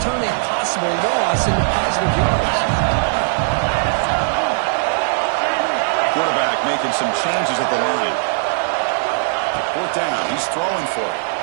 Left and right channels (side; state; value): left; silent; digital silence